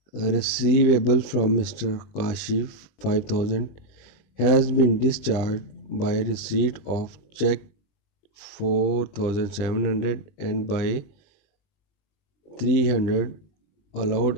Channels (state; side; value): late; right; 20 ms